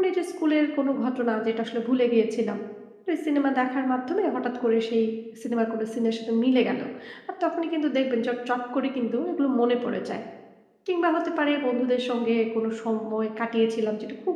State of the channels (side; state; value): both; identical; correlation 1.00